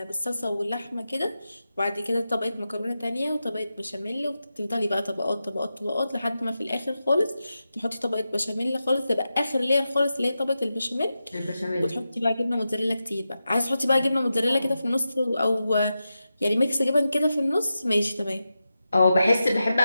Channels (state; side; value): inverted; both; correlation -0.90